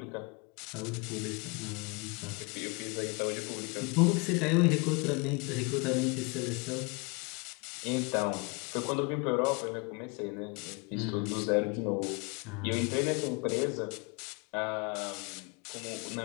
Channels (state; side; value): quieter; right; 30.2 dB